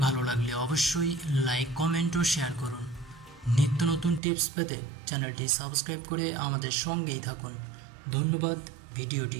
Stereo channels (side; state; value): left; drops out; at 4.2 s